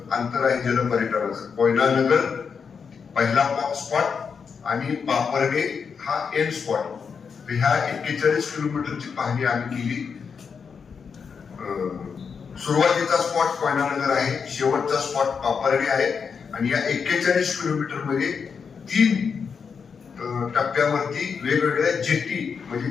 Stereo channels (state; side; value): quieter; right; 6.1 dB